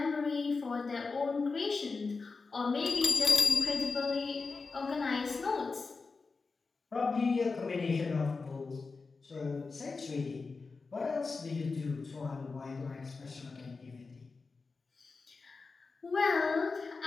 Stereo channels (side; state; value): right; quieter; 4.3 dB